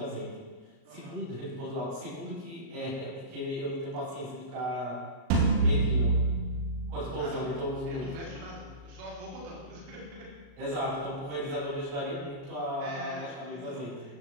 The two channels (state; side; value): late; left; 37 ms